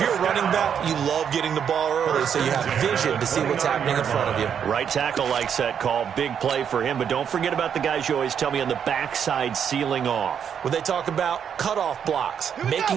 a running back, you love getting the ball early so you have vision to see what's happening in front of you. Right tackle likes that call. Big play for him, but don't forget about the guys you always tell me on the backside sealing off. When they talk about cutoff blocks, making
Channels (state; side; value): quieter; left; 8.0 dB